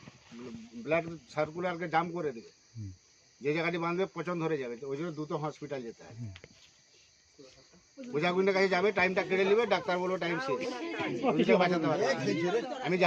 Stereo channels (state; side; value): identical; both; correlation 1.00